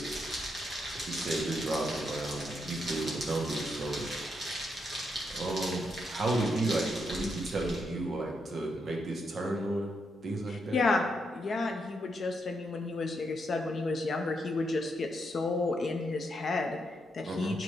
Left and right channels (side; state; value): both; normal; correlation 0.80